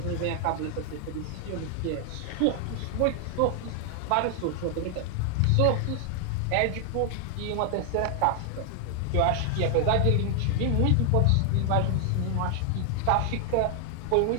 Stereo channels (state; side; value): different; both; correlation 0.00